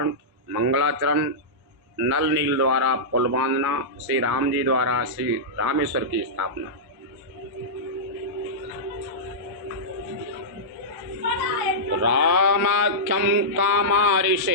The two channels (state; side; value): late; left; 1.1 ms